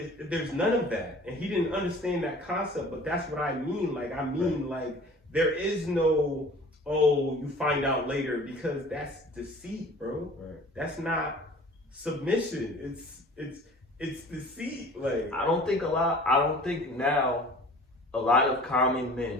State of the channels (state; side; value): normal; both; correlation 0.46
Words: there's none of that, and he didn't understand that concept. But that's what I mean. Like there is no, you find out later, because that's deceit, bro. Right. That's not submission. It's deceit. Like I don't think now a lot of common